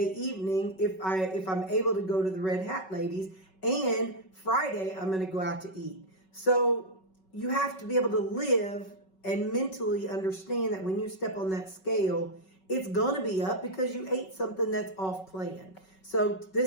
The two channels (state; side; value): late; right; 5.3 ms